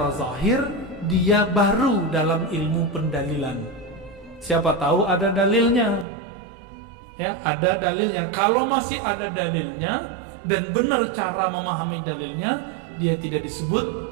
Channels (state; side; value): drops out; left; at 6.1 s